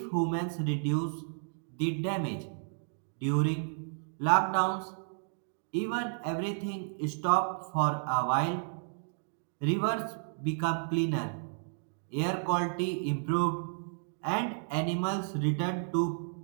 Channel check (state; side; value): silent; left; digital silence